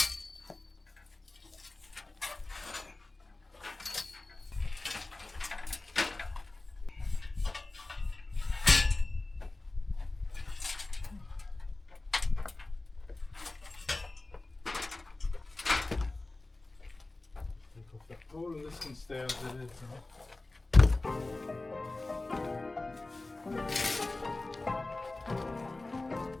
Take off that pole and this can stay as it is. Huh?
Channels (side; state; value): right; quieter; 3.0 dB